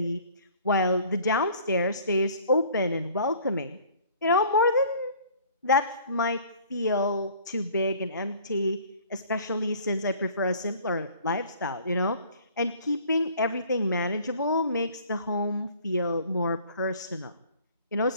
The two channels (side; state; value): both; inverted; correlation -0.52